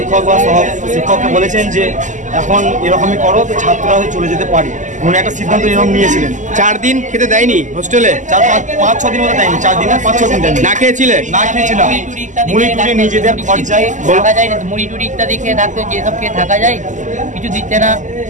বা শিক্ষককে বলেছেন যে এখন এরকমই করো, তো ছাত্ররা চলে যেতে পারে। উনি একটা সিদ্ধান্ত এরকম নিয়েছিলেন। 4 দিন খেতে দেয়নি হোস্টেলে, 5-6 দিন মতো দেয়নি, 4 দিন 5-6 দিন দেয়নি। না খেয়েছিলে? না খেয়েছিলাম, মুড়ি টুড়ি নিজেদের খরচায় থাকা যায়, মুড়ি টুড়ি ইত্যাদি খেয়ে থাকতে, যেসব খেয়ে থাকা যায়, কিছু দিচ্ছে না।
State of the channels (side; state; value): left; late; 0.36 ms